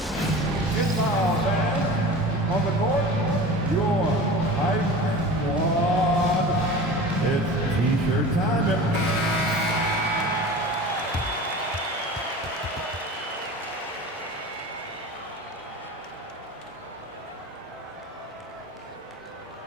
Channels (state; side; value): normal; both; correlation 0.35